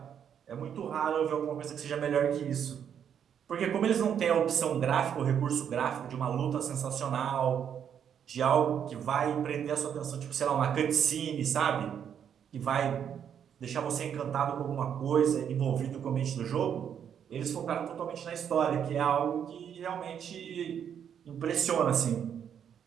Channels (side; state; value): left; quieter; 8.5 dB